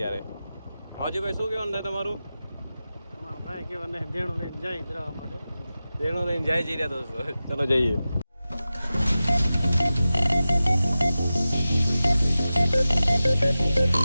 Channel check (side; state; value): both; inverted; correlation -0.95